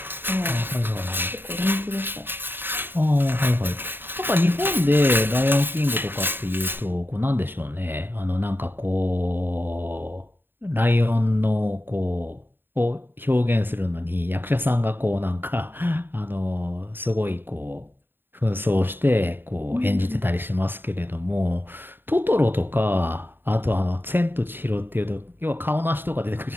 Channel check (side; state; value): left; late; 0.097 ms